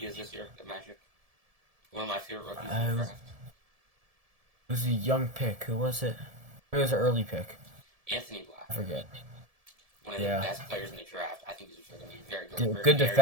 is this year, the Magic? One of my favorite rookies in the draft. It was a young pick. Who was it? It was an early pick. Anthony Black. I forget. One of the best players in the draft. I think he's going to be very good. Good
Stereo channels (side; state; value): left; late; 1.7 ms